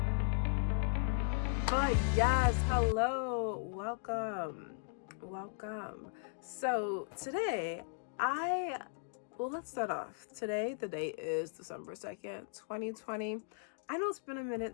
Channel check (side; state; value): right; silent; digital silence